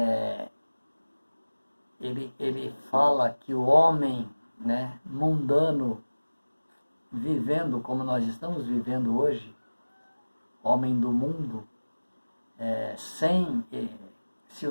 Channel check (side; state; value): both; inverted; correlation -1.00